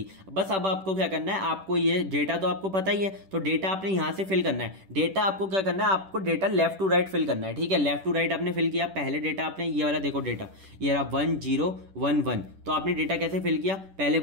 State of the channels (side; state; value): left; late; 10 ms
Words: बस अब आपको क्या करना है, आपको ये डेटा तो आपको पता ही है, तो डेटा आपने यहाँ से फिल करना है। डेटा आपको क्या करना है, आपको data left to right fill करना है, ठीक है। लेफ्ट टू राइट आपने फिल किया, पहले डेटा आपने ये वाला देखो डेटा ये रहा 1011, तो आपने डेटा कैसे फिल किया, पहले